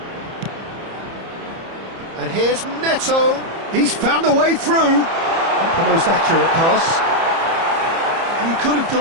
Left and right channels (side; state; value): left; late; 30 ms